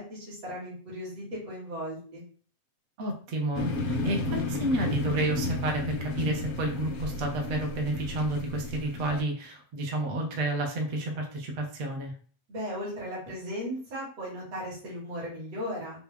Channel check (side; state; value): left; late; 7.9 ms